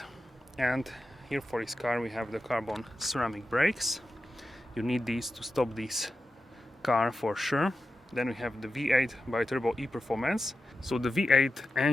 and here for this car we have the carbon ceramic brakes. You need these to stop this car for sure. Then we have the V8 bi-turbo e-performance. So the V8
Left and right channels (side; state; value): both; normal; correlation 0.91